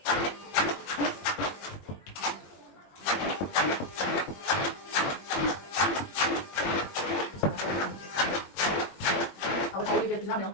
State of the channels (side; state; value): right; late; 21 ms